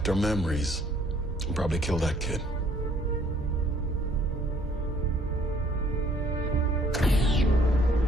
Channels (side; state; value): both; normal; correlation 0.61